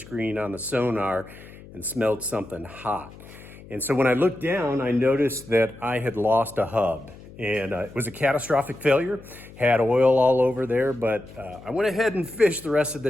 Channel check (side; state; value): left; noise; hum, 19 dB below the sound